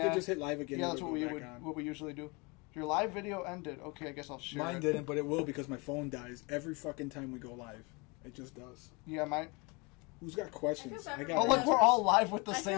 could just hit live again. Yeah, and that's it'll what go we back on. what we usually do. Your live video ended. Okay, I guess I'll share Mine it. didn't, but it will because my phone dies every fucking time we go live. It just does. Yeah, mine. Who's got questions? I feel bad for got. Oh, look, we're all live with the I feel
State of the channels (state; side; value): quieter; right; 28.4 dB